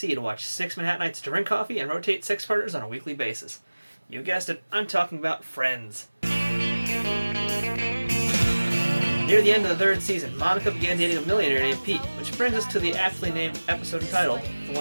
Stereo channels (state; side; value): inverted; both; correlation -1.00